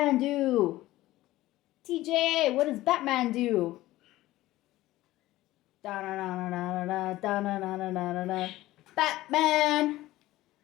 do? TJ, what does Batman do? Da-na-na-na-na-na-na, Batman!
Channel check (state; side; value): quieter; right; 16.6 dB